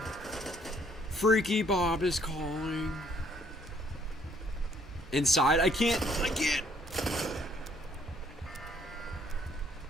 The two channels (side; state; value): both; normal; correlation 0.65